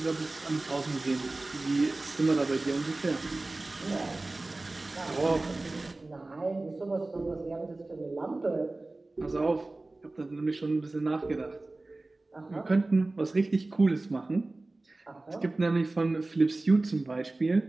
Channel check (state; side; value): quieter; left; 3.0 dB